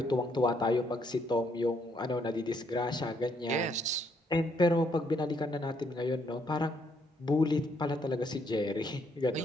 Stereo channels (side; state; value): both; normal; correlation 0.71